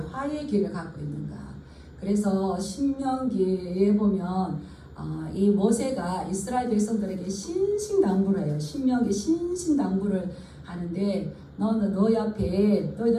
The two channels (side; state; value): both; identical; correlation 1.00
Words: 길을 갖고 있는가? 그래서 신명기에 보면 이 모세가 이스라엘 백성들에게 신신당부를 해요. 신명기 신신당부를 하는데 너희 앞에